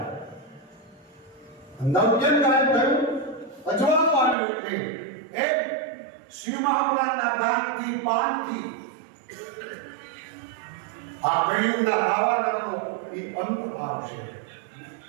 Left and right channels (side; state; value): left; drops out; at 4.4 s